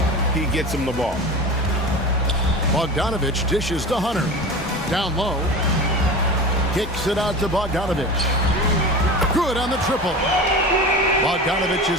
he gets them the ball. Bogdanovich dishes to Hunter. Down low. Kicks it out to Bogdanovich. Good on the triple. Bogdanovich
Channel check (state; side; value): normal; both; correlation 0.32